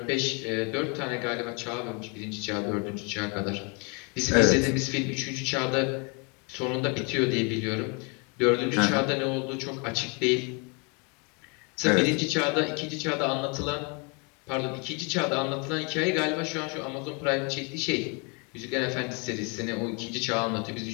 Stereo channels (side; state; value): right; quieter; 33.1 dB